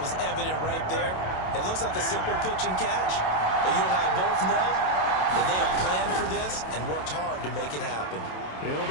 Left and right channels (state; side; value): late; right; 27 ms